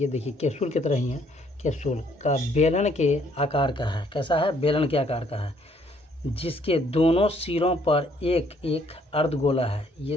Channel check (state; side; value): normal; both; correlation 0.65